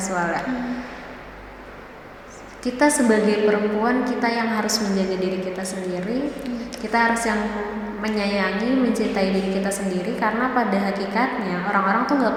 ya. Kita sebagai perempuan, kita yang harus menjaga diri kita sendiri. Kita harus yang menyayangi, mencintai diri kita sendiri, karena pada hakikatnya orang-orang tuh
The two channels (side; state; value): both; identical; correlation 1.00